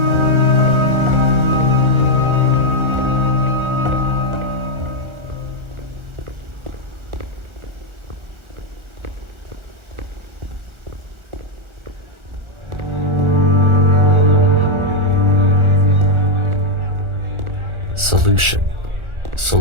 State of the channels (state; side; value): late; left; 1.4 ms